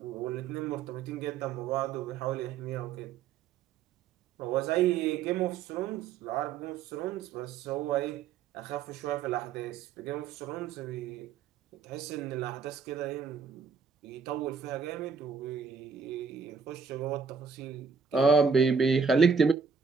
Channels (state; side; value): quieter; left; 6.0 dB